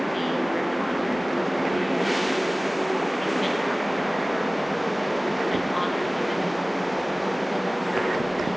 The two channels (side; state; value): both; normal; correlation 0.98